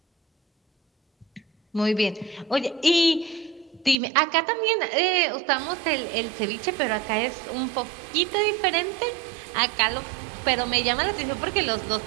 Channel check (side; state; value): left; drops out; at 4.0 s